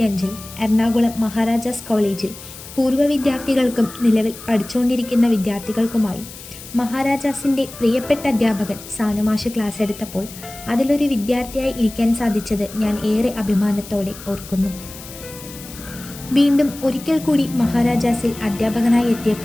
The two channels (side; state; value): left; noise; hiss, 15 dB below the sound